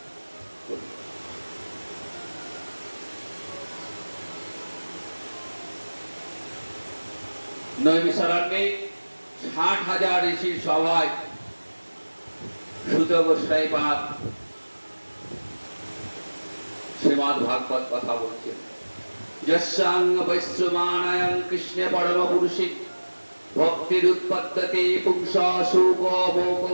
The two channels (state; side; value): inverted; both; correlation -1.00